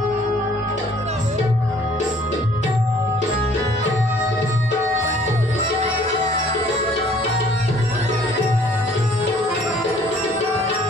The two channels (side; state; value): both; normal; correlation 0.57